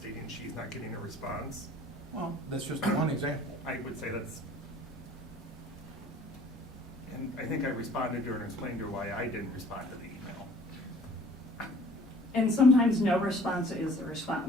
she's not getting a response? Well, that's just one example. I would say that's, and I think I responded to her and explained to her why I didn't respond to the email. And sometimes no response is the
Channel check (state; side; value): normal; both; correlation 0.52